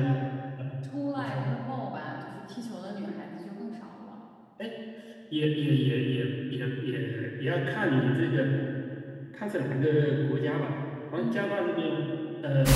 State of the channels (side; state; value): both; identical; correlation 1.00